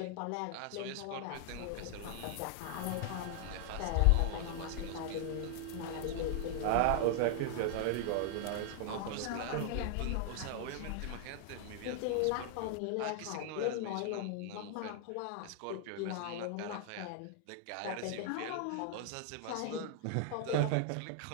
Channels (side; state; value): both; different; correlation 0.00